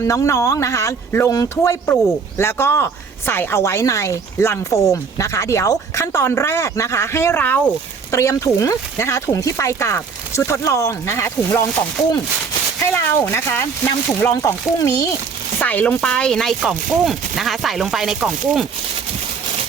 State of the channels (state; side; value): quieter; left; 5.4 dB